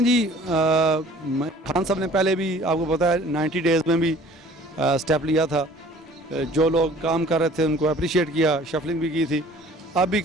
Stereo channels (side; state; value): both; normal; correlation 0.50